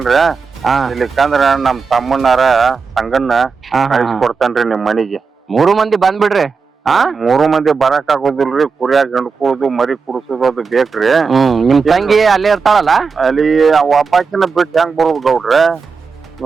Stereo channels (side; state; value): left; quieter; 5.1 dB